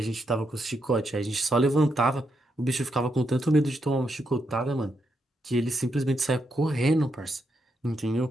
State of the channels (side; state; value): both; normal; correlation 0.81